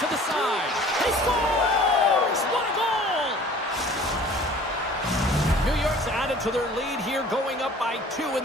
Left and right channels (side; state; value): both; normal; correlation 0.48